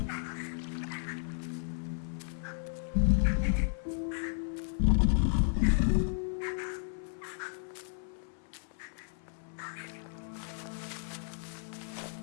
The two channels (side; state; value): right; silent; 55 dB below the other